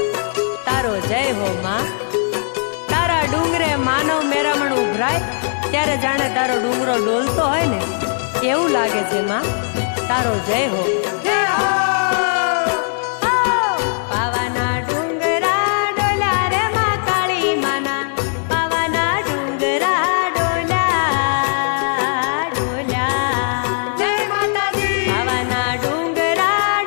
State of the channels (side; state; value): right; silent; digital silence